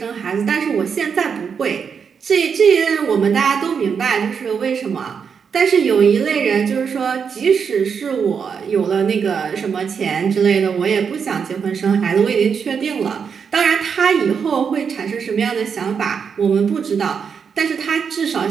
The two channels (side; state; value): left; quieter; 6.5 dB